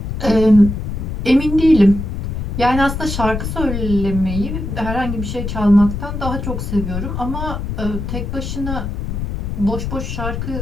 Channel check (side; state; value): left; noise; rumble, 4 dB below the sound